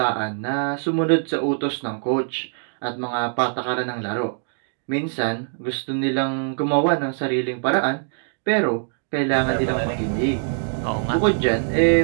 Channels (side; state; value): left; silent; digital silence